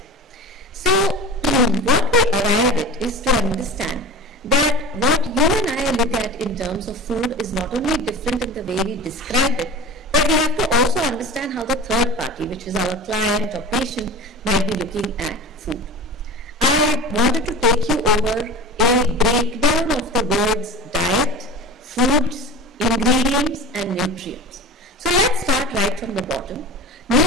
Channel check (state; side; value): normal; both; correlation 0.32